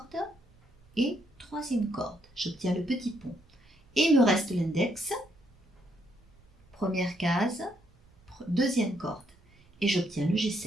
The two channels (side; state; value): right; noise; rumble, 29 dB below the sound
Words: et troisième corde. J'obtiens le petit pont. Et il me reste l'index, première case, deuxième corde. Et j'obtiens le